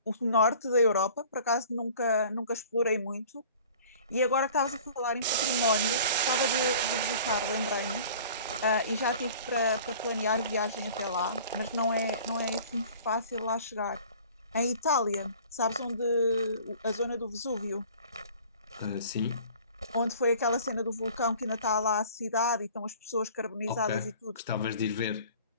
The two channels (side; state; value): both; inverted; correlation -0.47